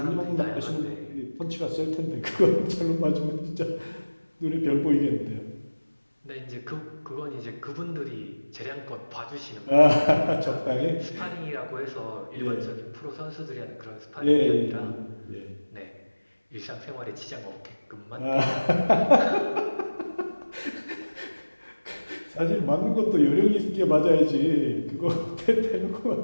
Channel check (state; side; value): inverted; both; correlation -1.00